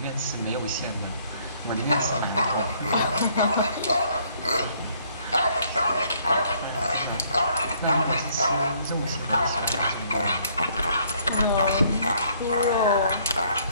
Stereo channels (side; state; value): both; inverted; correlation -0.64